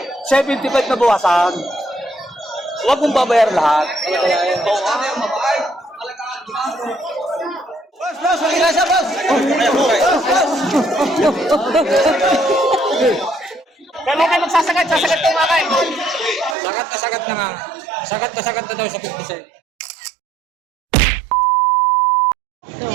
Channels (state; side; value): drops out; left; at 16.6 s